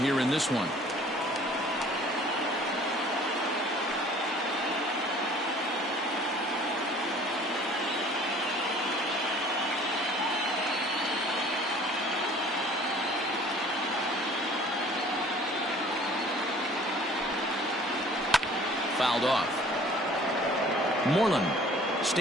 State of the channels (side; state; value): both; normal; correlation 0.51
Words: in this one. Fouled off. Moreland